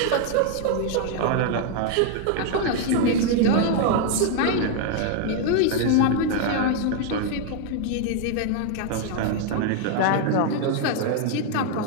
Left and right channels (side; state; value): both; different; correlation 0.00